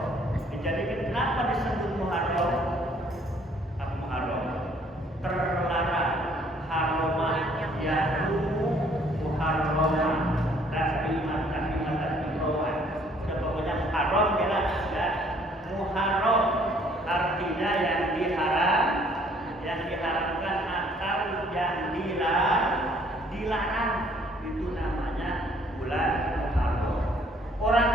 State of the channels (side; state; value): both; normal; correlation 0.61